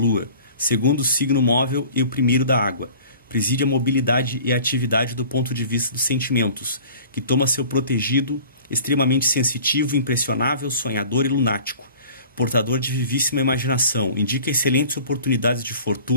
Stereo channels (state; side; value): inverted; both; correlation -0.46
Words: segundo signo móvel e o primeiro da água. Preside a mobilidade e a atividade do ponto de vista dos sentimentos, que toma seu protegido extremamente sensitivo, impressionável, sonhador e lunático. Portador de vivíssima imaginação, indica excelentes oportunidades de